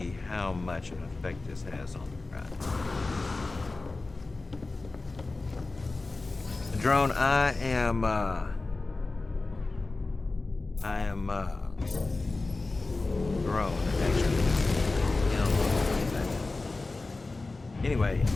how much of an effect this has on the ride. Drone, I am drone, actually. Anyway,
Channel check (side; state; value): right; quieter; 3.4 dB